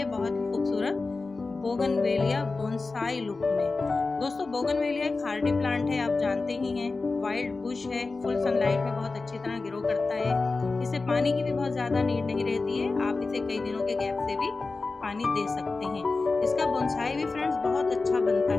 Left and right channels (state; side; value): quieter; right; 3.8 dB